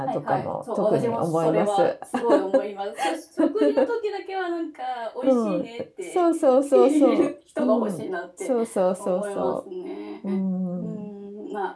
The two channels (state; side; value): identical; both; correlation 1.00